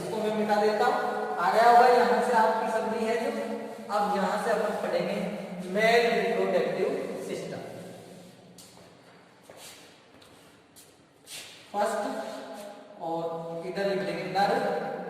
मैं मिटा देता हूं, आ गया होगा यहाँ से आपकी समझी है जो। अब यहाँ से अपन पढ़ेंगे मेल रिप्रोडक्टिव सिस्टम। फर्स्ट और इधर लिख देंगे नर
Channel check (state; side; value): identical; both; correlation 1.00